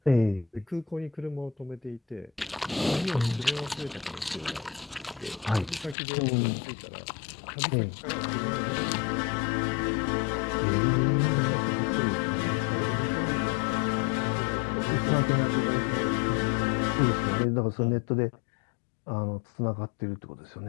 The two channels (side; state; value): right; drops out; at 6.0 s